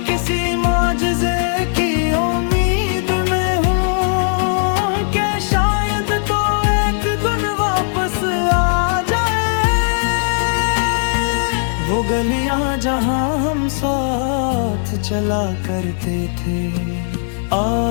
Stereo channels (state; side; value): silent; right; 68 dB below the other